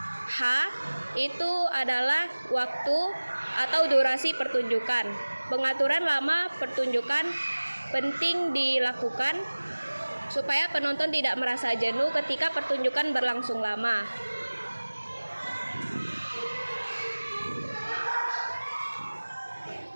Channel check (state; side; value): inverted; both; correlation -1.00